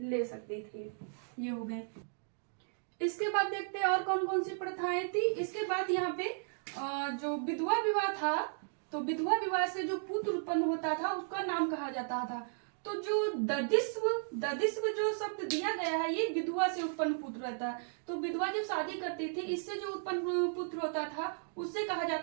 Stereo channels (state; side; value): silent; left; digital silence